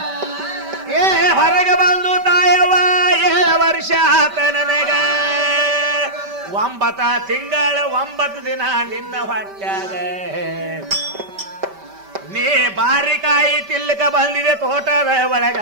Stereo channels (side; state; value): left; late; 5.1 ms